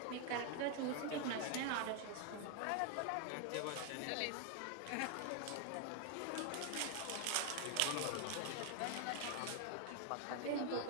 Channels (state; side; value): different; both; correlation 0.00